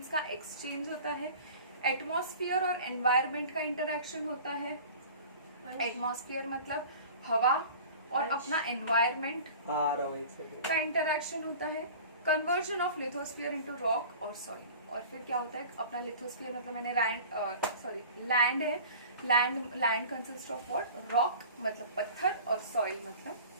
का एक्सचेंज होता है। एटमॉस्फेयर और एनवायरमेंट का इंटरैक्शन होता है। एटमॉस्फेयर मतलब हवा और अपना एनवायरमेंट का इंटरैक्शन होता है। Conversion of lithosphere into rock और सॉइल। और फिर क्या होता है? अपना लिथोस्फीयर मतलब मैंने लैंड है, land consist of what? Rock मतलब पत्थर और सॉइल मतलब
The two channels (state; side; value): inverted; both; correlation -0.41